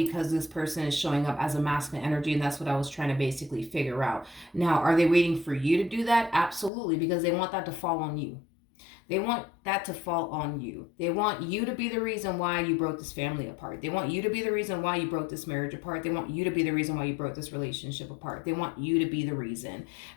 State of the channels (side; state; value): right; drops out; at 6.7 s